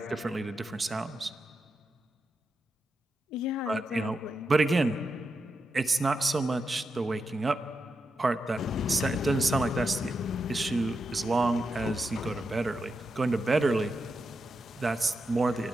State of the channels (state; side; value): normal; both; correlation 0.87